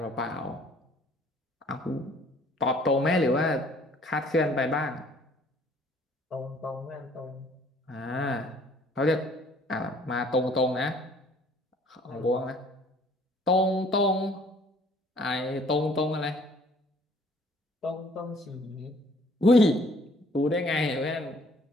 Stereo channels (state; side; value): normal; both; correlation 0.58